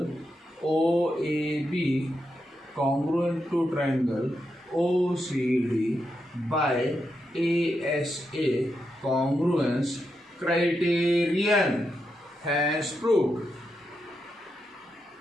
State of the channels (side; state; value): both; normal; correlation 0.85